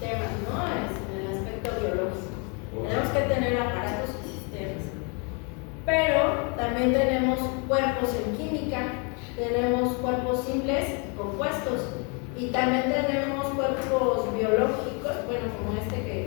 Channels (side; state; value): right; quieter; 34.5 dB